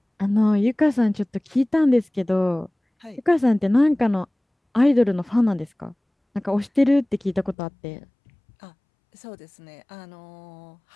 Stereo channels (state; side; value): drops out; right; at 7.6 s